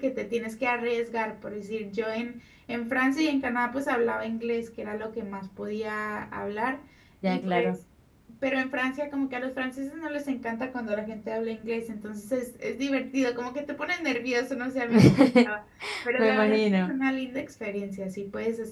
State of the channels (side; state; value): both; identical; correlation 1.00